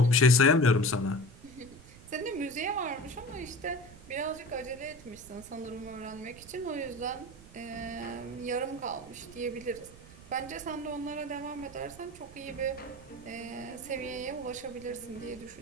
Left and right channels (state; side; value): noise; right; rumble, 19 dB below the sound